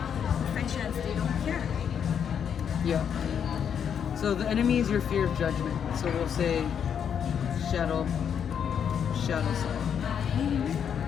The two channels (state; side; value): quieter; right; 8.0 dB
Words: professions. They don't care. yeah. So the enemy is your fear of judgment. So we'll say shadow side.